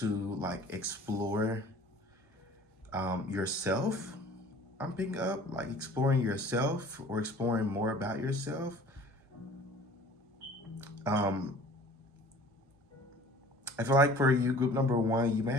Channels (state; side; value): normal; both; correlation 0.47